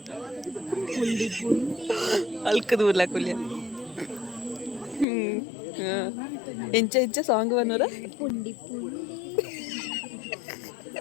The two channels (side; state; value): right; drops out; at 5.1 s